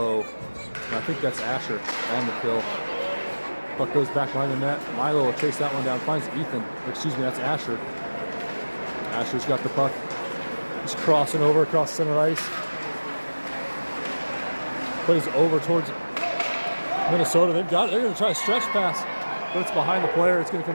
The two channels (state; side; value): inverted; both; correlation -1.00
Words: and I think that's Asher on the kill. Puck goes back behind the net. Milo will chase that one down, finds Ethan. Excuse me, that's Asher. Asher's got the puck. He's crossing over across center ice. Plays over towards Minnesota. They've got it. They're going to try a stretch pass, but it's behind the player. It's going to